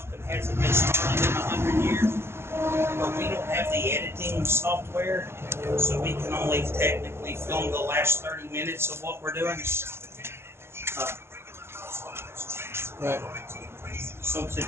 hasn't been started in 100 years. But we don't have the editing software, so we can only technically film the last 30 minutes of what we're doing. Right. So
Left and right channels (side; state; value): left; late; 0.12 ms